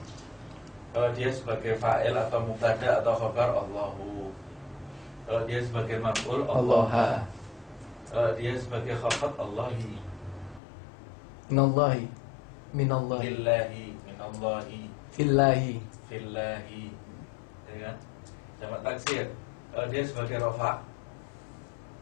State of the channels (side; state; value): right; drops out; at 10.6 s